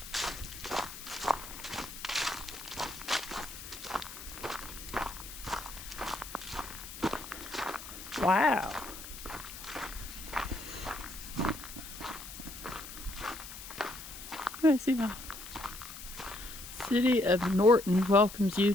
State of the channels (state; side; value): noise; left; hiss, 12 dB below the sound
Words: Wow. Let's see my City of Norton welcomes you